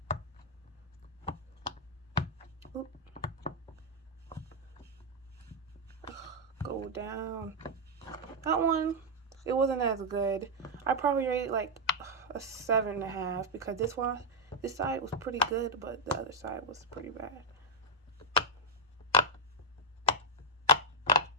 Oop. Go down. That one, it wasn't as good. I probably rate it like a 7.5 because this side was pretty good, but the other side was pretty bad.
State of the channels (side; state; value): both; normal; correlation -0.01